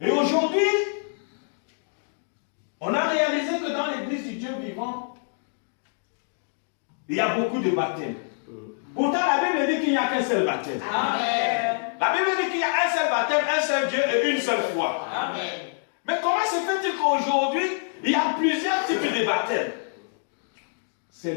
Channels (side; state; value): right; silent; digital silence